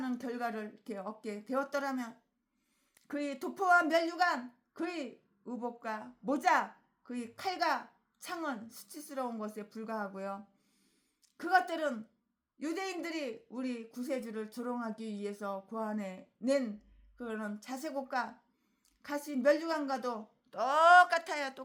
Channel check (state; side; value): identical; both; correlation 1.00